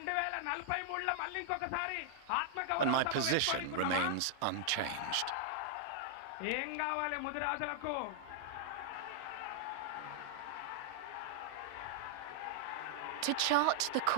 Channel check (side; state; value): both; different; correlation -0.01